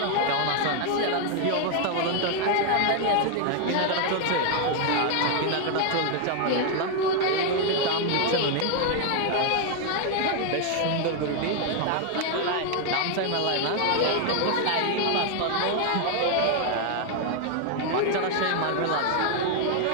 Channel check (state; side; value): different; both; correlation 0.00